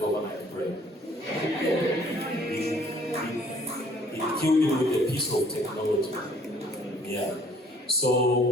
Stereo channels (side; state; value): both; normal; correlation 0.58